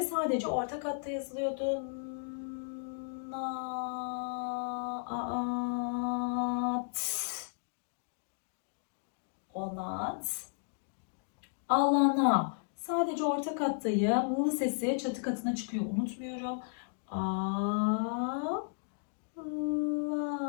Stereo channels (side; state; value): right; silent; digital silence